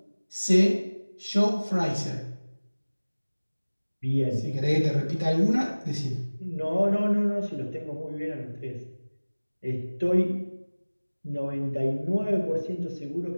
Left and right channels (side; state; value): both; inverted; correlation -1.00